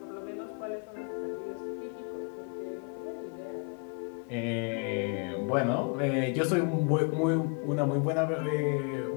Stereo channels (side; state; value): right; quieter; 36.3 dB